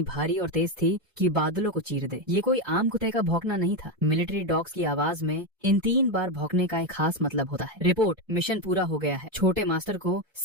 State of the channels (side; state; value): both; normal; correlation 0.10